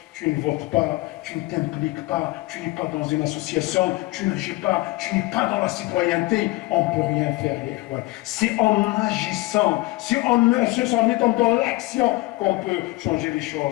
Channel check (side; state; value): right; quieter; 20.7 dB